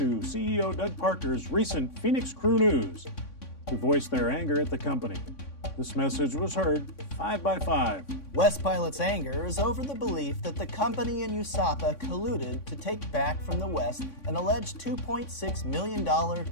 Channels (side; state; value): right; late; 3.6 ms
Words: CEO Doug Parker's recent Phoenix Crew News to voice their anger at the company. This message was heard 5 by 5. West Pilot's anger is over the belief that the company and USAPA colluded to take back from the West an alleged $2.6 million